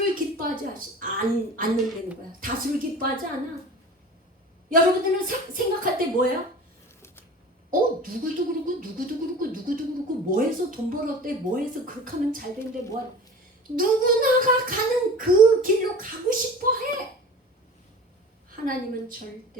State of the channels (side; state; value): both; normal; correlation 0.38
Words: 기뻐하지 않는다는 거야. 다수를 기뻐하지 않아. 여러분들은 생각할 때 뭐예요? 누구도 그렇고 뭐해서 돈 벌었대, 뭐해서 그렇게 하면 잘 된대, 누구나가 가는 그 길로 가고 싶어 해. 하나님은